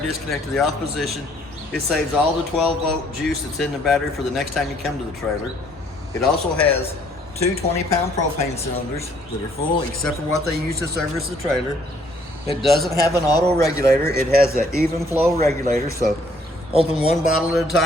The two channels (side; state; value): both; normal; correlation 0.63